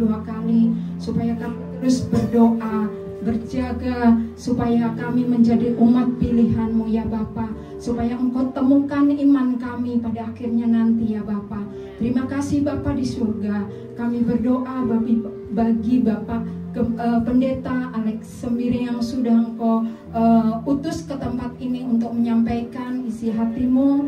kali, supaya kami terus berdoa, berjaga, supaya kami menjadi umat pilihan-Mu ya Bapa, supaya Engkau temukan iman kami pada akhirnya nanti ya Bapa. Terima kasih Bapa di surga. Kami berdoa bagi Bapak Pendeta Alex Sembiring yang sudah Engkau utus ke tempat ini untuk menyampaikan isi hati-Mu.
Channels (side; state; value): both; identical; correlation 1.00